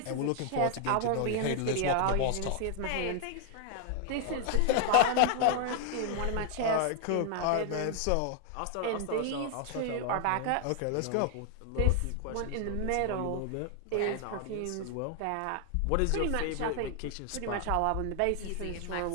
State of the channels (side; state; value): both; different; correlation 0.00